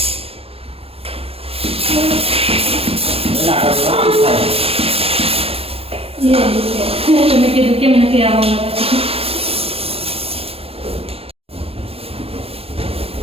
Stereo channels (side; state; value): left; late; 0.28 ms